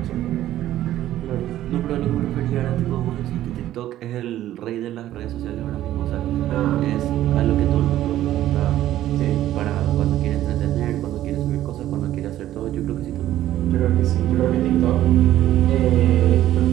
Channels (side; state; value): left; quieter; 13.3 dB